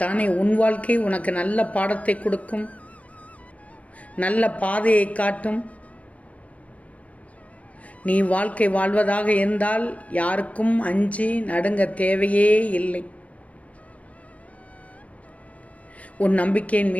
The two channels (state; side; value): late; right; 0.066 ms